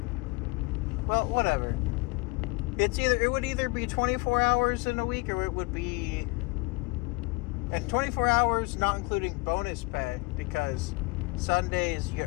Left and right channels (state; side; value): quieter; right; 26.0 dB